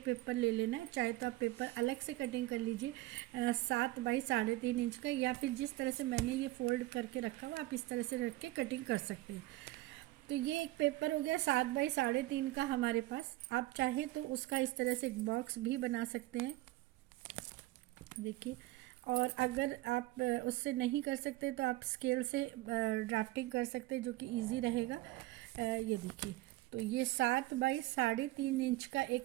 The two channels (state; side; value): quieter; left; 18.0 dB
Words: पेपर ले लेना है। चाहे तो आप पेपर अलग से कटिंग कर लीजिए 7 बाई 3.5 इंच का, या फिर जिस तरह से मैंने ये फोल्ड करके रखा हुआ आप इस तरह से रख के कटिंग कर सकते हैं। तो ये एक पेपर हो गया 7 बाई 3.5 का हमारे पास। आप चाहे तो उसका इस तरह से एक बॉक्स भी बना सकते हैं, देखिए। और अगर आप उससे नहीं कर सकते तो आप स्केल से ड्राफ्टिंग कर सकते हैं, जो कि इजी रहेगा। ये देखिए, तो ये 7 बाई 3.5 इंच का